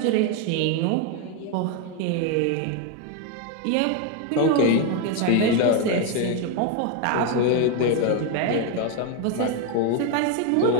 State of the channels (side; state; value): both; different; correlation 0.02